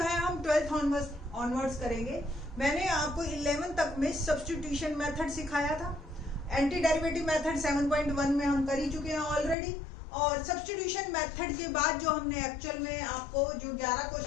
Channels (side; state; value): right; drops out; at 9.6 s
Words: हम 12th ऑनवर्ड्स करेंगे। मैंने आपको 11 तक में सब्स्टिट्यूशन मेथड सिखाया था। एंटी डेरिवेटिव मेथड 7.1 में हम कर ही चुके हैं ऑलरेडी और सब्स्टिट्यूशन मेथड के बाद जो हमने एक्चुअल में आपको जो 11